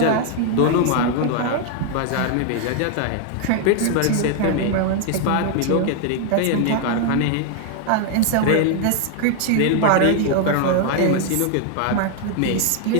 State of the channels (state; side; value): different; both; correlation 0.00